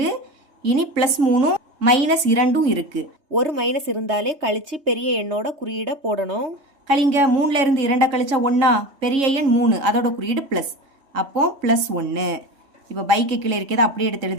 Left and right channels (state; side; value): late; left; 3.7 ms